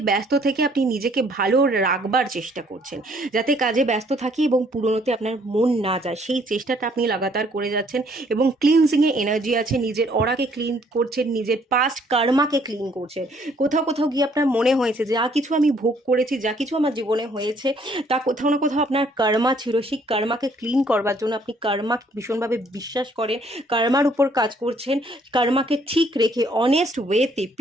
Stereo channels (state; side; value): normal; both; correlation 0.63